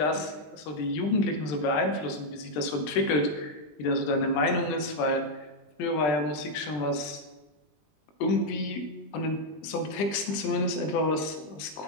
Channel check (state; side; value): late; right; 20 ms